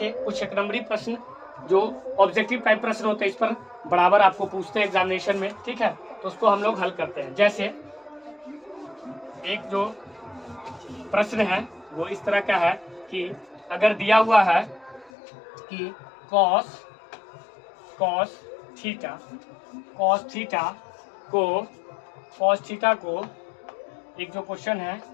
कुछ एक नंबरी प्रश्न जो ऑब्जेक्टिव टाइप प्रश्न होते हैं, इस पर बराबर आपको पूछते हैं एग्जामिनेशन में। ठीक है, तो उसको हम लोग हल करते हैं। जैसे एक जो प्रश्न है वो इस तरह का है कि अगर दिया हुआ है कि cos थीटा को एक जो क्वेश्चन है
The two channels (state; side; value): drops out; right; at 15.1 s